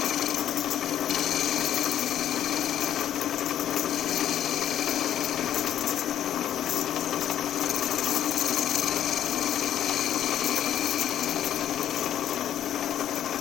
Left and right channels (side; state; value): right; quieter; 10.8 dB